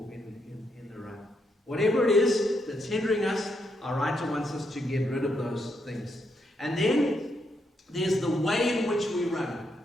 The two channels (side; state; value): both; normal; correlation 0.79